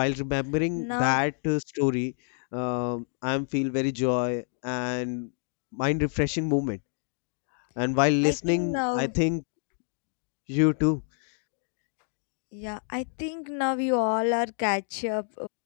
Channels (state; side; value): silent; right; 59 dB below the other